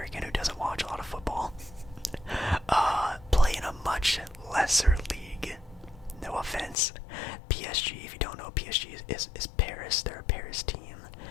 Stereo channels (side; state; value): right; drops out; at 6.8 s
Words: who doesn't watch a lot of football, play in a much lesser league. No offense. PSG, if you don't know, PSG is Paris. They're a Paris team.